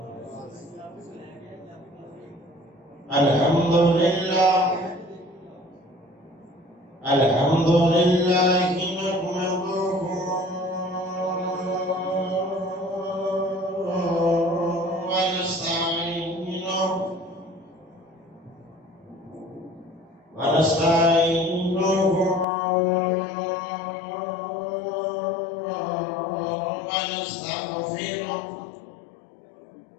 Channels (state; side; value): drops out; right; at 22.5 s